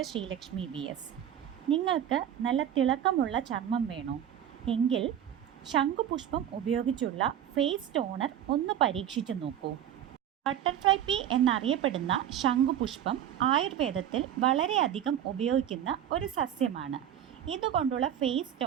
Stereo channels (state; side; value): quieter; left; 10.3 dB